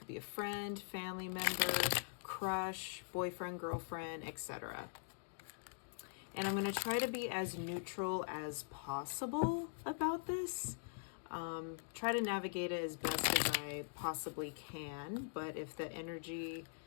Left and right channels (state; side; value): silent; right; digital silence